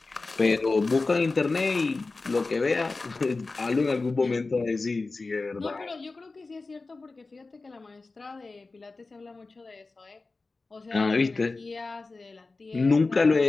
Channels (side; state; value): right; quieter; 3.7 dB